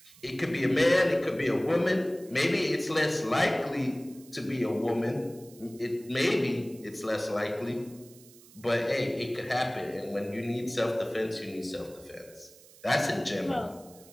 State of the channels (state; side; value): noise; right; hiss, 23 dB below the sound